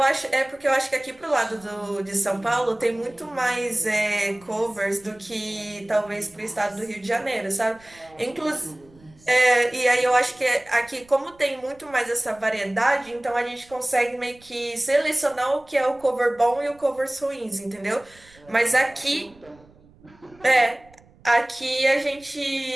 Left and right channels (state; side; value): noise; right; rumble, 27 dB below the sound